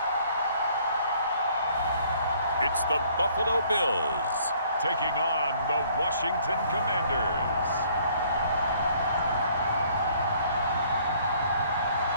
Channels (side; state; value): both; inverted; correlation -0.60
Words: It's the Buffalo Bills taking on the Washington Commanders.